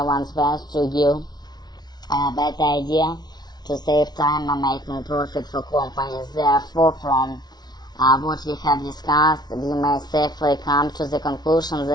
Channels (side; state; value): right; late; 0.20 ms